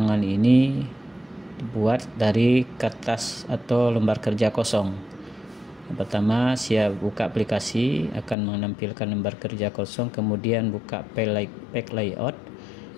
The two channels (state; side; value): drops out; right; at 8.3 s